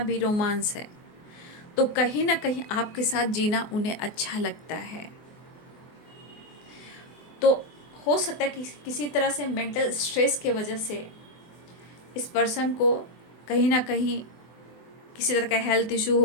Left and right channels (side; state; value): right; late; 24 ms